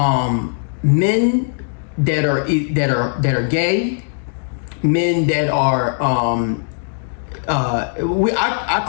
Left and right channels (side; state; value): right; silent; digital silence